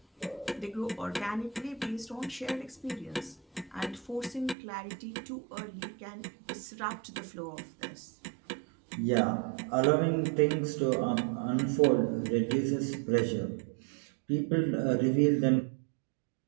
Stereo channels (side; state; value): left; drops out; at 4.5 s